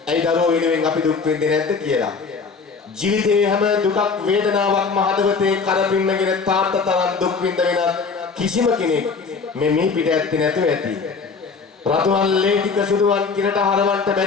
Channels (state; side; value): quieter; right; 4.9 dB